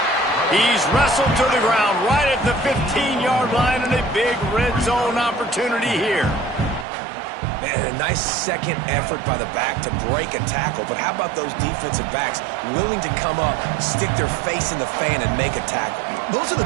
He's wrestled to the ground right at the 15-yard line, and a big red zone opportunity here. Man, a nice second effort by the back to break a tackle, but how about those defensive backs willing to come up, stick their face in the fan, and make a tackle? Those are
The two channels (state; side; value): drops out; left; at 6.9 s